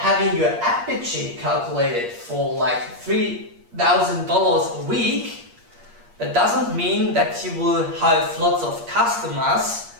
your ad budget calculated for like $3,000 a week, that doesn't mean that you will have lots of customers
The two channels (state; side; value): late; left; 8.5 ms